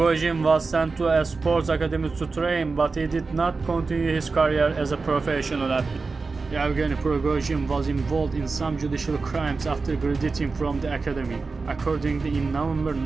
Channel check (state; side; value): quieter; left; 4.2 dB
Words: was sent to a sports academy to train, but he did not continue his career as a professional athlete. Yevgeny Prigozhin was involved in some judicial crimes after graduating from the academy. Accordingly, in November